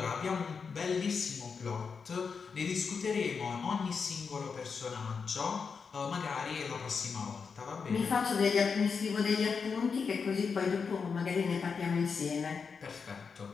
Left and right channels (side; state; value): right; quieter; 5.6 dB